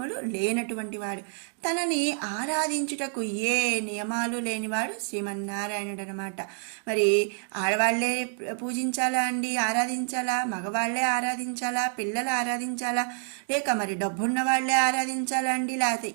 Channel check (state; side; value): silent; left; 57 dB below the other